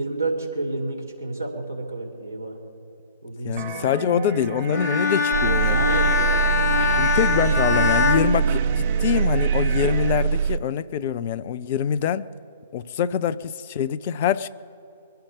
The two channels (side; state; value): both; inverted; correlation -0.42